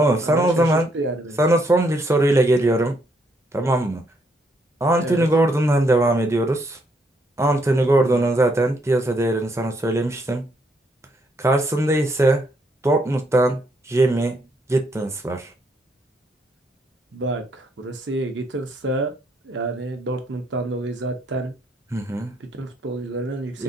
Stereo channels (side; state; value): both; normal; correlation 0.73